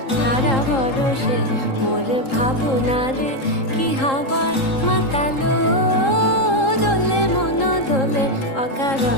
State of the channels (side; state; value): right; late; 3.8 ms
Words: ধারা বরষে। মোর ভাবনারে কি হাওয়ায় মাতালো, দোলে মন দোলে